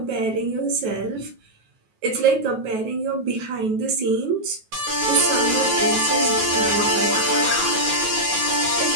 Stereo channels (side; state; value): left; late; 9.3 ms